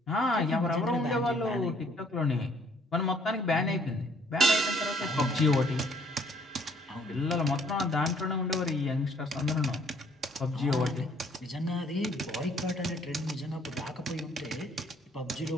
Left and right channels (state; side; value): normal; both; correlation 0.62